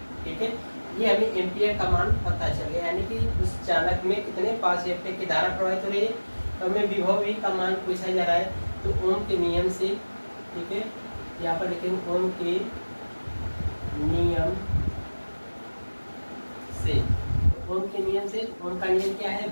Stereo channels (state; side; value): inverted; both; correlation -1.00